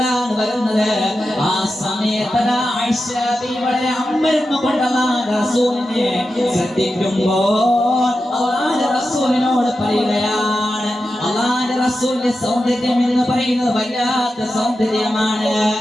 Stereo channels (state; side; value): normal; both; correlation 0.91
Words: വരുന്നത്. ആ സമയത്ത് ആയിഷ ബീവി വളരെ അമ്പരന്ന് കൊണ്ട് അല്ലാഹുവിന്റെ റസൂലിനെ ശ്രദ്ധിക്കുമ്പോൾ അല്ലാഹുവിന്റെ റസൂലിനോട് പറയുകയാണ്, അല്ലാഹുവിന്റെ റസൂലിന്റെ സൗന്ദര്യം എന്ന് പറയുന്നത് വല്ലാത്ത സൗന്ദര്യമാണ്.